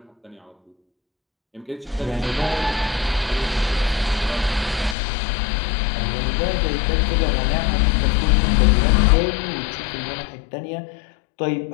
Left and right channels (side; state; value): right; drops out; at 5.0 s